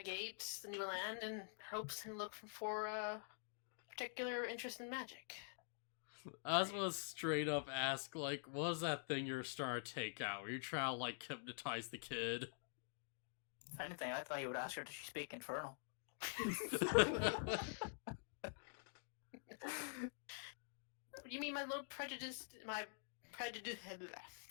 the new land in hopes and look for a particular interest in magic. I was gonna straight up ask, like, what was that thing you're starting to take out? Were you trying to, like, hypnotize the kid? If anything, I thought you would ask her, does she speak Infernal? You mean my little prejudice? I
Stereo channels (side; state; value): right; silent; digital silence